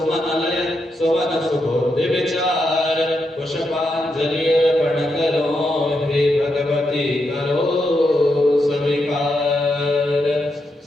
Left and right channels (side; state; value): both; normal; correlation 0.83